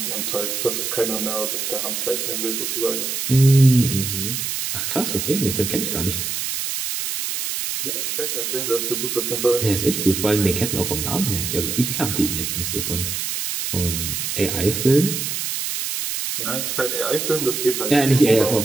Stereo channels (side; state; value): right; noise; hiss, 2 dB below the sound